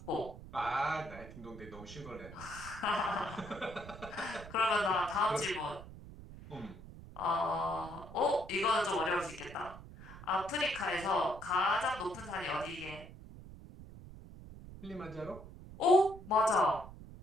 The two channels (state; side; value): noise; right; rumble, 15 dB below the sound